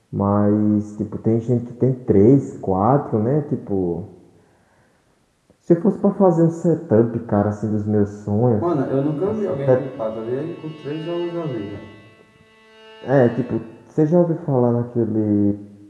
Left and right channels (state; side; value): identical; both; correlation 1.00